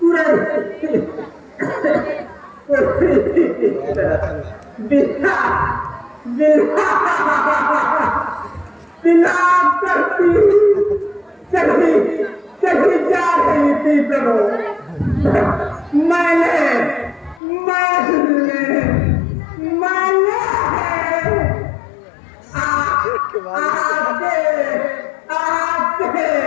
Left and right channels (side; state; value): right; drops out; at 17.4 s